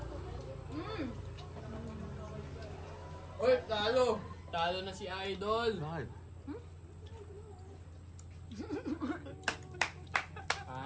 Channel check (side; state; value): both; identical; correlation 1.00